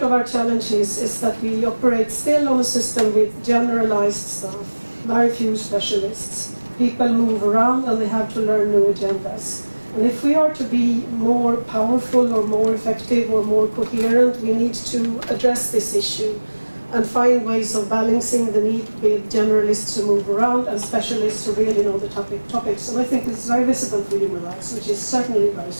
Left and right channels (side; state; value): both; inverted; correlation -1.00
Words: of our challenge is that we operate still on a system with generalized staff, very few specialists. People move around and they have to learn new agendas. And if we are to be more powerful or more effective or more coherent, we need to address this issue and find ways of balancing the need with generalists who move around and specialists who really know the topics. And I think this is very visible for human rights, which is certainly a very